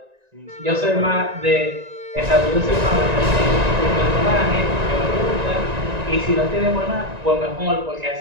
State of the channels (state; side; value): late; left; 1.9 ms